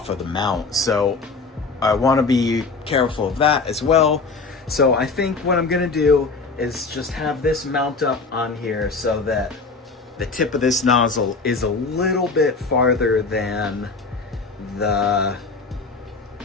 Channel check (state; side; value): quieter; right; 4.2 dB